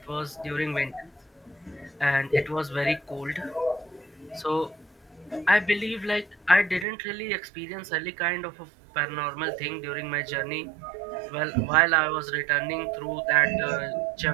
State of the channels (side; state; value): left; drops out; at 6.9 s